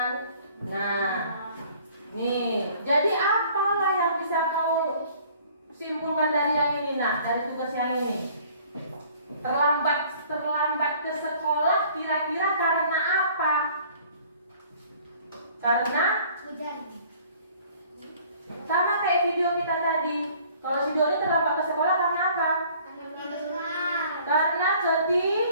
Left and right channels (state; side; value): inverted; both; correlation -0.54